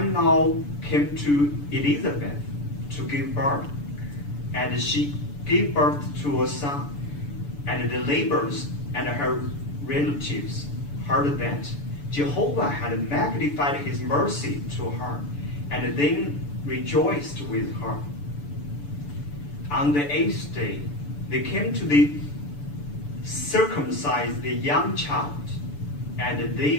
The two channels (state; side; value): late; right; 6.9 ms